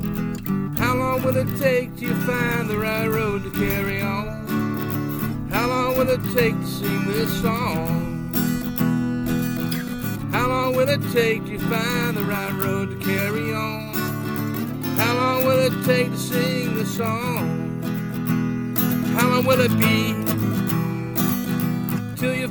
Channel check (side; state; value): both; identical; correlation 1.00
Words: How long will it take till you find the right road to carry on? How long will it take to sing this song? How long will it take till you find the right road to carry on? How long will it take to sing this song? How long will it be till you